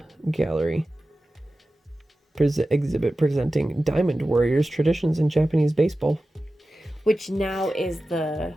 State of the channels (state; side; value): normal; both; correlation 0.95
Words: Gallery exhibit presenting Diamond Warriors traditions in Japanese baseball. Which now is the